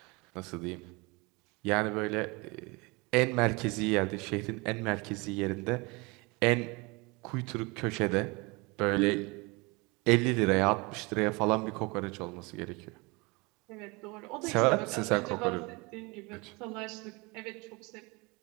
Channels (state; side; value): quieter; left; 26.8 dB